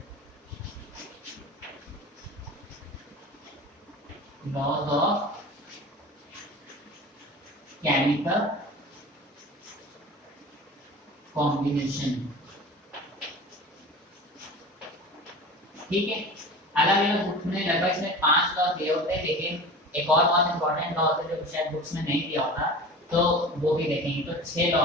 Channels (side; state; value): both; normal; correlation 0.35